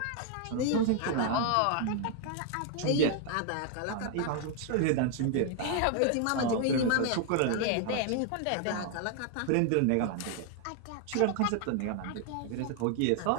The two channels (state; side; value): different; both; correlation 0.00